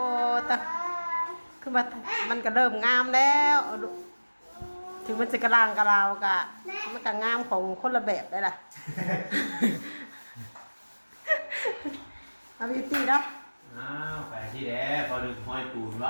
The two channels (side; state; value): both; inverted; correlation -1.00